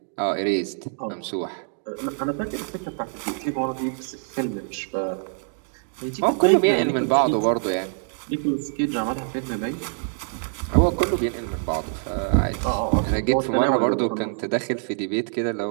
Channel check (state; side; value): silent; left; 62 dB below the other